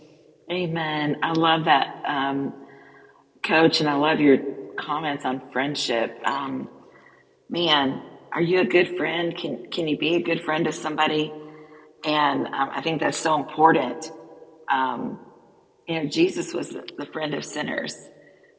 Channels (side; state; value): both; identical; correlation 1.00